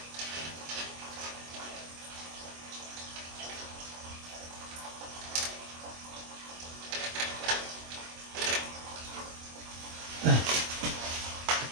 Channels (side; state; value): left; late; 24 ms